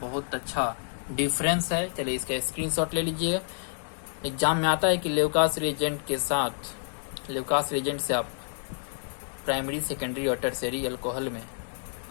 अच्छा डिफरेंस है। चलिए इसका स्क्रीनशॉट ले लीजिए। एग्जाम में आता है कि ल्यूकास रिएजेंट के साथ, ल्यूकास रिएजेंट से आप प्राइमरी, सेकेंडरी और टर्शियरी अल्कोहल में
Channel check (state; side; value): silent; right; 59 dB below the other